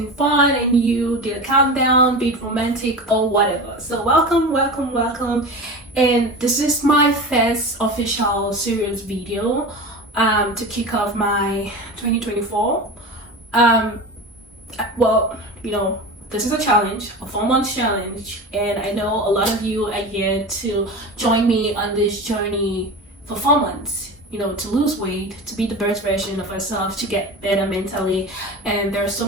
fun and you did a countdown, be it romantic or whatever. So welcome. And this is my first official serious video to kick off my 2024. Well, you know, this is a challenge, a 4-month challenge, and I know a lot of you are here to join me on this journey for 4 months, you know, to lose weight, to be the best version of ourselves, to get better mentally. And there are so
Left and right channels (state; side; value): normal; both; correlation 0.29